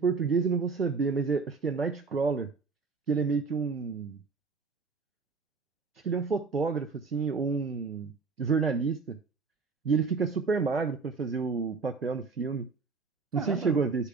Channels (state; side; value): quieter; left; 4.7 dB